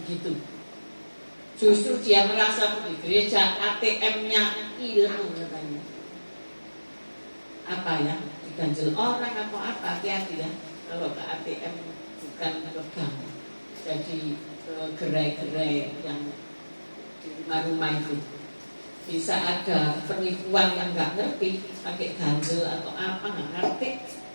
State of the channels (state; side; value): inverted; both; correlation -1.00